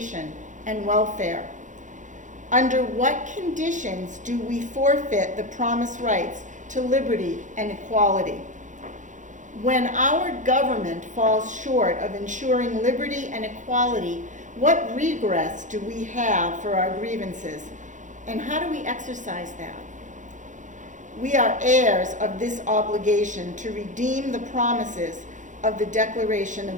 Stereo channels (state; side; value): late; left; 0.36 ms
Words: and welfare? Under what conditions do we forfeit the promised rights to liberty and equality? When our government falls short of ensuring liberty and equality, what redress do we have for our grievances, and how do we exercise that? We are heirs of this obligation to redeem the promises of the Declaration